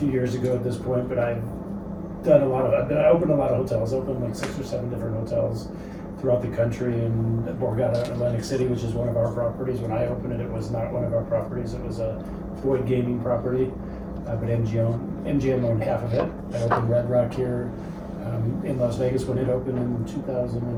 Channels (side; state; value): both; identical; correlation 1.00